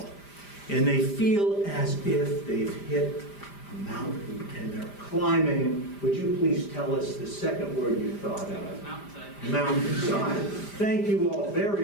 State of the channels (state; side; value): late; right; 5.0 ms